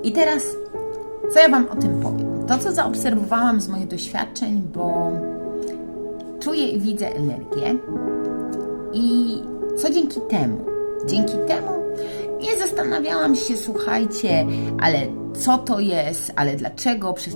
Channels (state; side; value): inverted; both; correlation -1.00